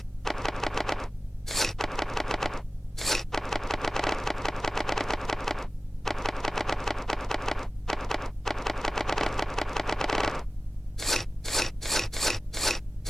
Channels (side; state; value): both; normal; correlation 0.96